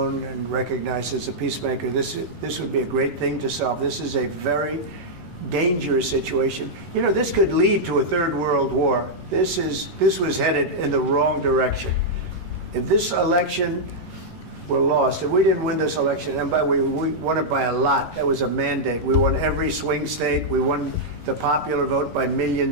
and recognized as a peacemaker. This would be a great thing to solve. This is a very dangerous situation. You know, this could lead to a third world war. This was headed in the wrong direction. If this election were lost, if we didn't win this election, and we won it by a lot, that was a mandate. We won every swing state. We won the popular vote by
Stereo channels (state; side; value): late; left; 11 ms